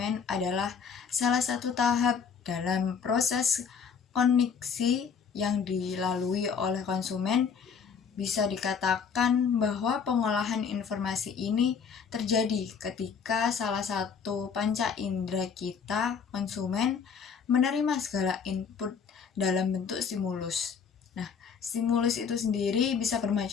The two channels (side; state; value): right; quieter; 6.4 dB